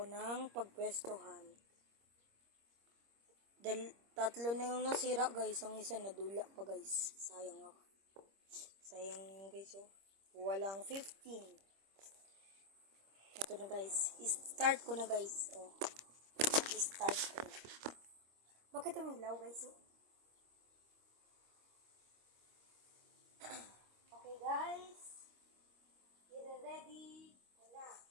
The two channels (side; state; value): left; late; 26 ms